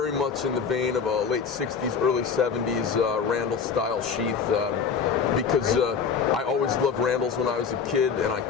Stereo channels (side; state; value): right; quieter; 6.1 dB